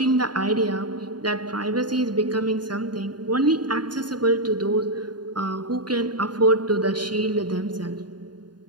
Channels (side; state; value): left; late; 0.70 ms